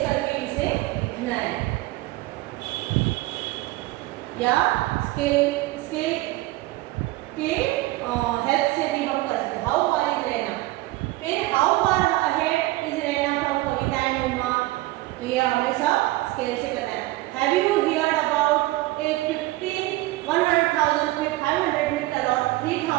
करके इसे लिखना है या स्केल के हेल्प से भी हम कर सकते हैं। हाउ फार इज रहना, फिर हाउ फार अहेड इज रहना फ्रॉम कविता एंड उमा। तो ये हमेशा स्केल से करना है। Have you heard about a 100,000 500 metre और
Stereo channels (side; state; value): left; quieter; 19.0 dB